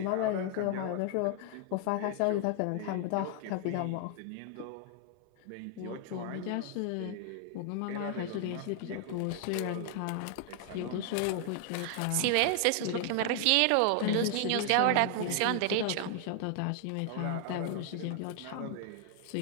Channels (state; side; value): different; both; correlation 0.00